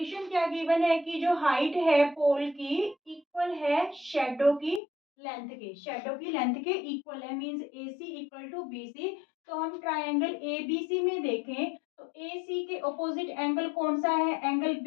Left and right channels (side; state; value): right; drops out; at 4.8 s